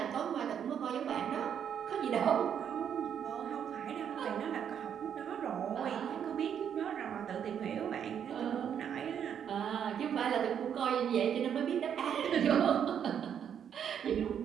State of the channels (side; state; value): left; quieter; 8.5 dB